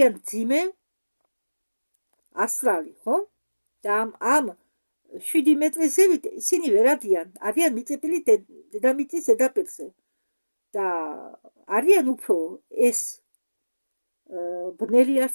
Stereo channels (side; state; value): both; inverted; correlation -1.00